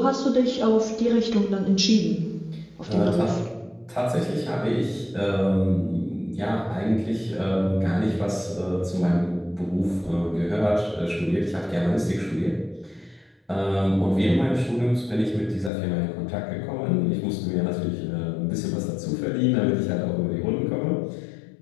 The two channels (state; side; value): drops out; right; at 15.7 s